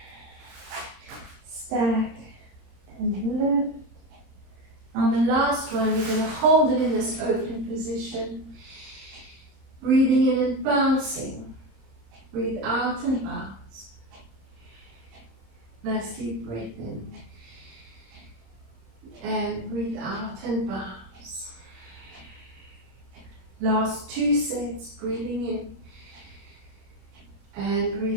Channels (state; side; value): late; left; 26 ms